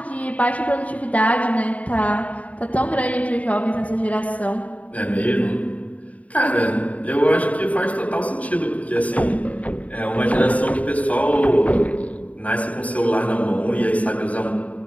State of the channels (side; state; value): right; late; 0.069 ms